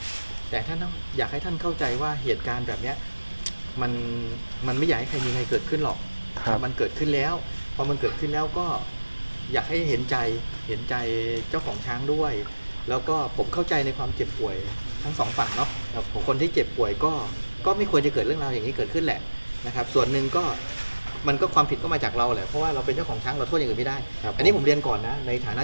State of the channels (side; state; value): both; inverted; correlation -1.00